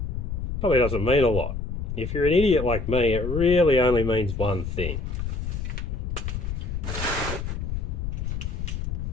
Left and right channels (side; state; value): left; noise; rumble, 4 dB below the sound